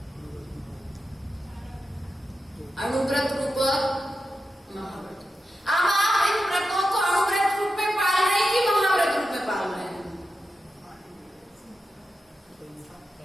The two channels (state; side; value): normal; both; correlation 0.90